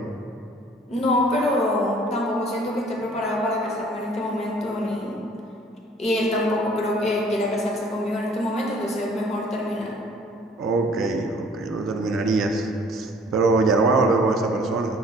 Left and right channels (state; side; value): normal; both; correlation 0.55